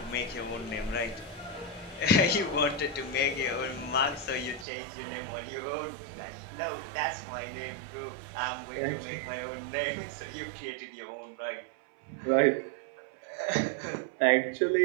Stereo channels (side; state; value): left; drops out; at 4.7 s